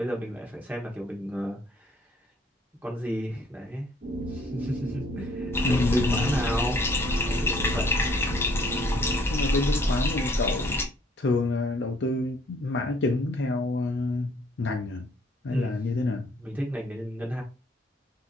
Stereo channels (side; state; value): both; normal; correlation 0.62